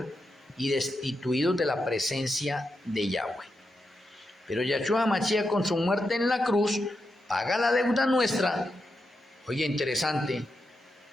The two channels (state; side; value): normal; both; correlation 0.86